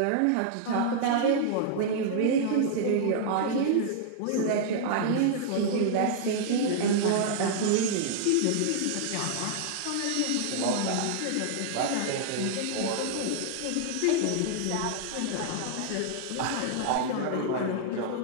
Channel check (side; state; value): both; different; correlation -0.01